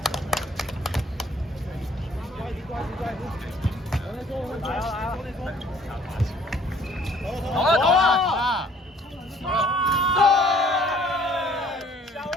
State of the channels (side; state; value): both; normal; correlation 0.58